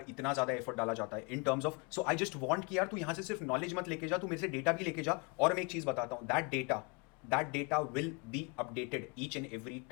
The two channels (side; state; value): right; quieter; 31.7 dB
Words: इतना ज़्यादा एफर्ट डाला जाता है इन terms of? So I just want कि यार तू यहाँ से सिर्फ नॉलेज मत लेके जा, तू मेरे से डेटा भी लेके जा। और मैं एक चीज़ बताता हूँ, that data will be updated each and every